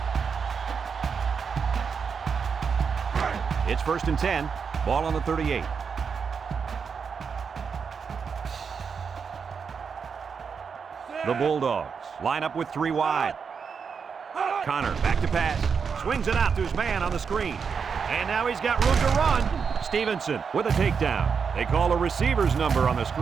It's 1st and 10. Ball on the 38. The Bulldogs line up with 3 wide. Connor back to pass. Swings it out to his man on the screen. And now he's got room to run. Stevenson with a takedown. They call a receiver's number on the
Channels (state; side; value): quieter; left; 6.0 dB